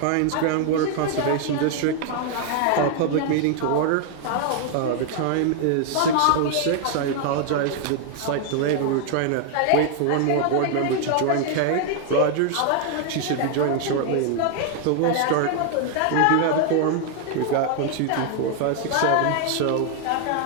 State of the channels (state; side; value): different; both; correlation 0.00